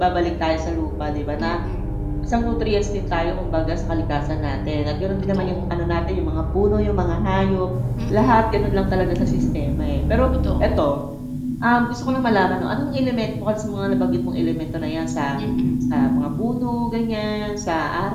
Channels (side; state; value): both; identical; correlation 1.00